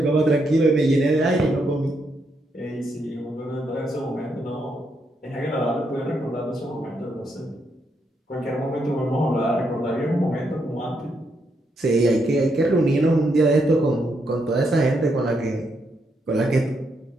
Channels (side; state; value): both; normal; correlation 0.78